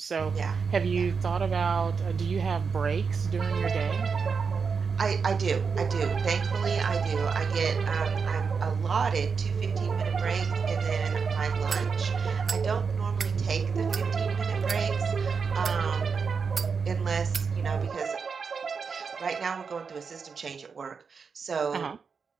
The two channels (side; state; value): left; quieter; 5.6 dB